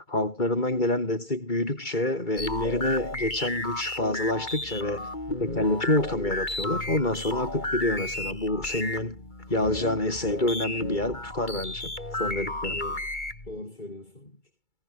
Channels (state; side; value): late; right; 2.3 ms